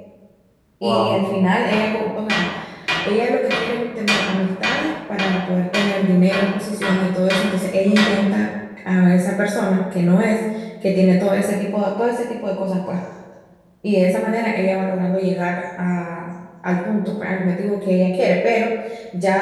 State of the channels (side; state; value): both; identical; correlation 1.00